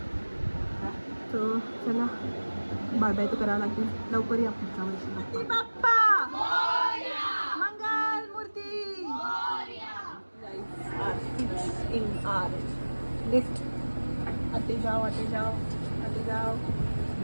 तर चला बाय बाय तर करावं लागतील. लवकर या पुढच्या वर्षी. बाप्पा मंगल मूर्ती. In R lift. आते जाओ आते जाओ आते जाओ.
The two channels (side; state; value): both; inverted; correlation -1.00